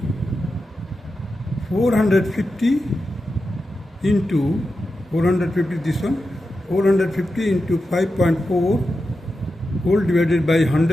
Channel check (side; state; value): both; normal; correlation 0.90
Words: 450 into 450, this one, 450 into 5.4 whole divided by